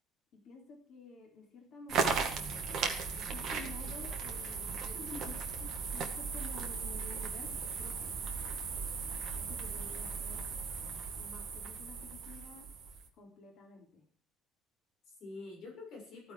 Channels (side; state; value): left; quieter; 4.4 dB